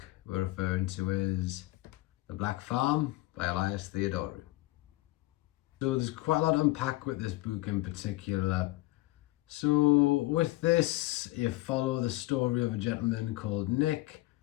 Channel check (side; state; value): right; quieter; 18.9 dB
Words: we're referring to is The Black Farm by Elias Theodoru. So there's quite a lot to unpack with this book in particular. So with this, you follow the story of a gentleman called Nick